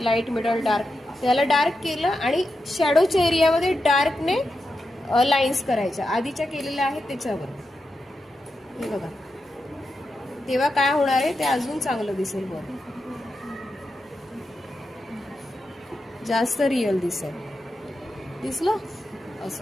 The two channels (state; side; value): normal; both; correlation 0.88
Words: लाईट मिडल डार्क, त्याला डार्क केलं आणि शॅडोच्या एरियामध्ये डार्कने लाईन्स करायच्या आधीच्या केलेल्या आहेत त्याच्यावर. हे बघा, तेव्हा काय होणार आहे ते अजून चांगलं दिसेल. बरं, जास्त रिअल दिसेल. दिसलं?